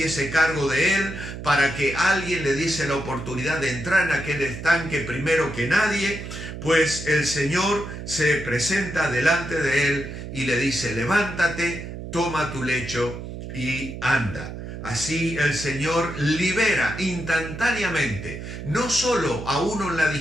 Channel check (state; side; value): noise; right; hum, 9 dB below the sound